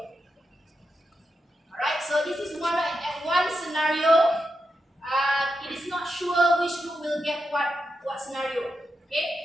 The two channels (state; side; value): normal; both; correlation 0.87